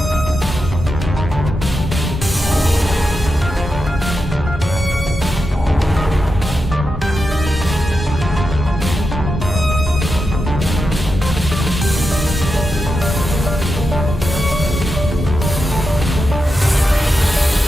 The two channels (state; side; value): normal; both; correlation 0.88